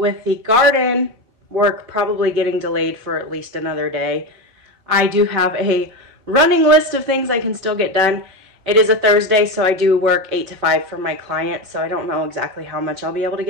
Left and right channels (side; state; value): left; late; 5.1 ms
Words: the garden work probably getting delayed for at least another day, I do have a running list of things I can still get done. It is a Thursday, so I do work 8 to 5 for my client, so I don't know exactly how much I'll be able to